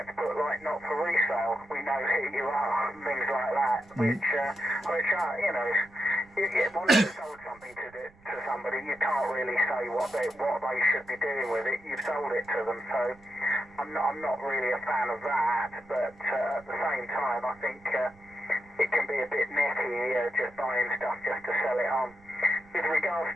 put like not for resale. We know who you are, and things like that, which are, you know, once you've sold something to somebody, you can't really say what they should be doing with it. You've sold it to them, so I'm not really a fan of that. But at the same time, I think it can be a bit necky just buying stuff just to sell it on. With regards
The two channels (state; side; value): noise; right; rumble, 27 dB below the sound